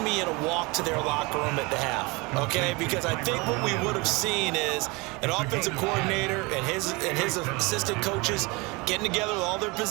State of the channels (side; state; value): left; quieter; 26.0 dB